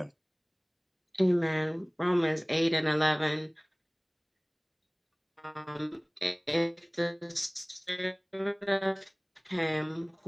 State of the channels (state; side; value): identical; both; correlation 1.00